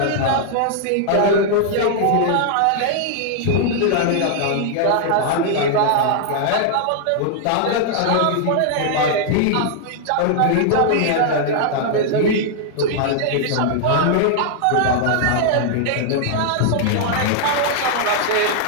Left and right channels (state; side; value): different; both; correlation -0.01